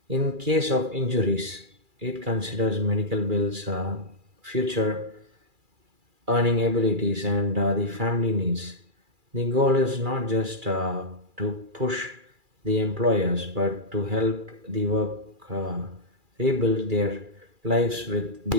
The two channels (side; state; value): left; late; 2.4 ms